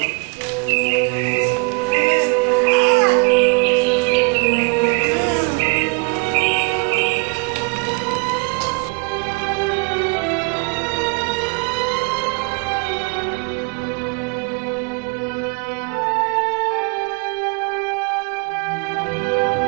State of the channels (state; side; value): quieter; left; 32.6 dB